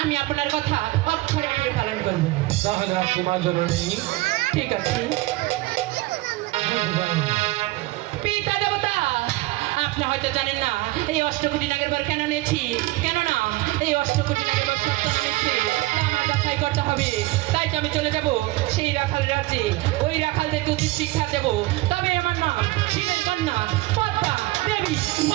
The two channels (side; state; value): left; quieter; 19.9 dB